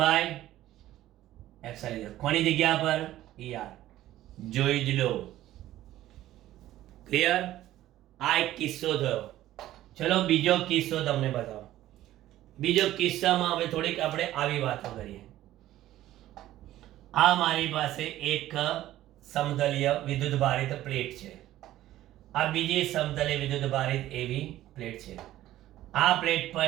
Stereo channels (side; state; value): left; quieter; 14.2 dB